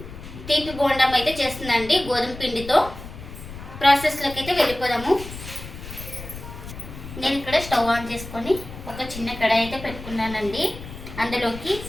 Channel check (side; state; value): left; noise; rumble, 12 dB below the sound